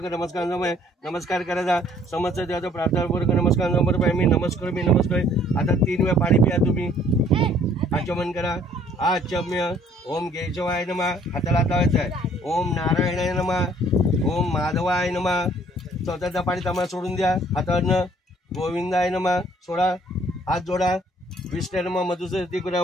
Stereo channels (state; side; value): normal; both; correlation 0.59